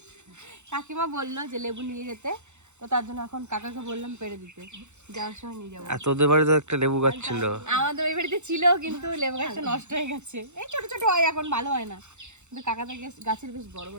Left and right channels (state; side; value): late; left; 0.83 ms